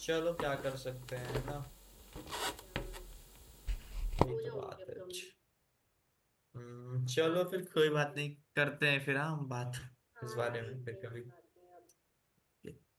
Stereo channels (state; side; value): identical; both; correlation 1.00